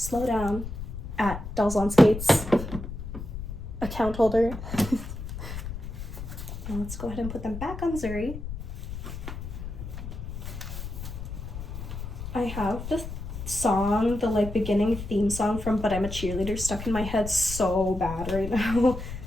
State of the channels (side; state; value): left; noise; rumble, 8 dB below the sound